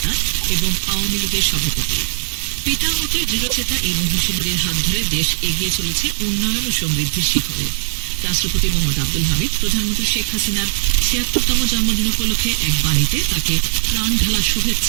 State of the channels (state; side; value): silent; left; digital silence